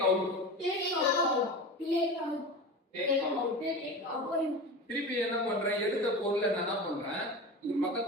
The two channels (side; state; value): both; normal; correlation 0.30